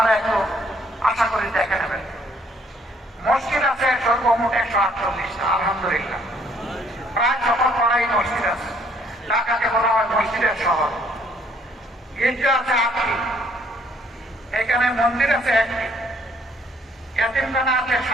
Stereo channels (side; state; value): both; normal; correlation 0.64